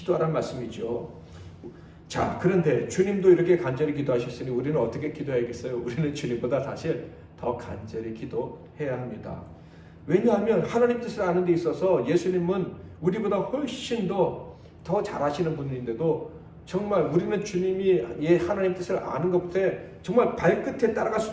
말씀이죠. 자, 그런데 주님도 이렇게 간절히 기도하셨으니 우리는 어떻게 기도해야겠어요? 우리는 주님보다 사실 더 간절히 기도해야 합니다. 왜냐하면 하나님 뜻을 아는 데 있어서 예수님은 우리보다 훨씬 더 잘하시는 분인데도 정말 우리는 주님이 하나님 뜻을 아는 것부터 정말 발끝에 따라갈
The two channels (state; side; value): identical; both; correlation 1.00